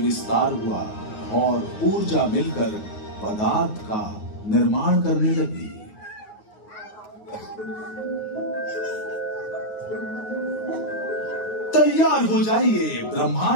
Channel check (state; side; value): late; right; 9.4 ms